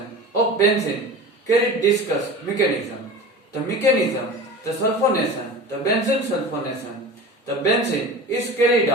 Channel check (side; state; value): both; normal; correlation 0.34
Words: of benzene carried discussed mechanism. The mechanism, the sulfonation, the benzene sulfonation, the benzene is carried